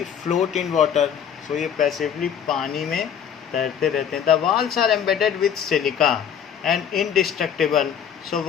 float in water. So ये पैसिवली पानी में तैरते रहते हैं। The walls are embedded with silica and indestructible. So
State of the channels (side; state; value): right; quieter; 8.3 dB